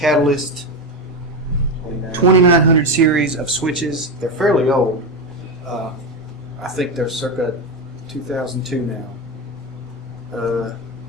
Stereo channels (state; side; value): normal; both; correlation 0.14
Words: 2900 series of switches. They're fairly old. I think they're circa 2002 now.